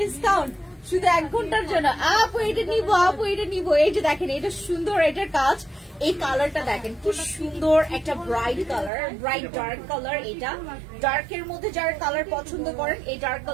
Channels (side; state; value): left; drops out; at 8.9 s